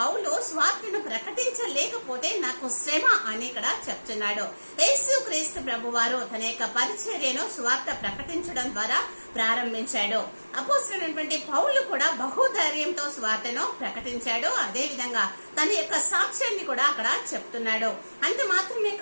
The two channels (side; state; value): both; inverted; correlation -1.00